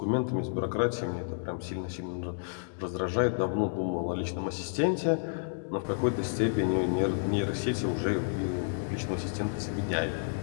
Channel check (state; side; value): silent; right; digital silence